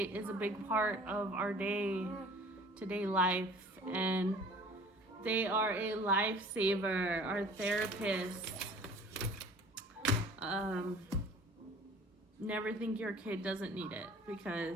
is a big part of our day-to-day life, and they are a lifesaver. Our therapists. Never think your kid doesn't need it,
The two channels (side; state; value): both; normal; correlation 0.48